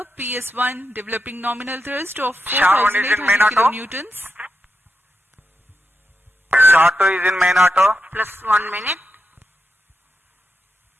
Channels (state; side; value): normal; both; correlation 0.86